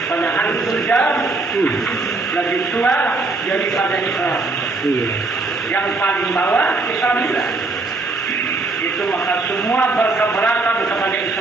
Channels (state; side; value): quieter; left; 3.5 dB